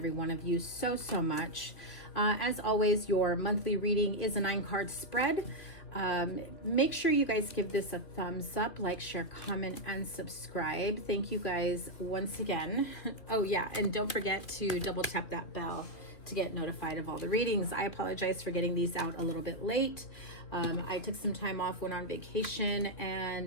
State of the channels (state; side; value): late; right; 2.7 ms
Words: one of you so much. As always, your monthly reading is a 9-card spread. Make sure you guys give this a thumbs up, like, share, comment, and subscribe. Thank you guys once again. Oh yeah, and don't forget to double tap that bell to get notified of all the readings. I apologize for getting these out a little bit late. I took some time off, went on vacation,